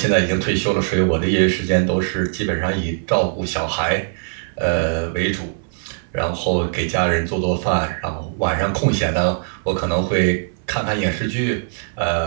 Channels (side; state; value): left; silent; 59 dB below the other